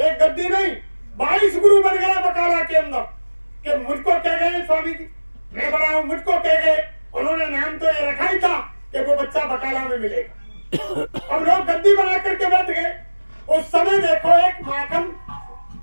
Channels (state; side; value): inverted; both; correlation -1.00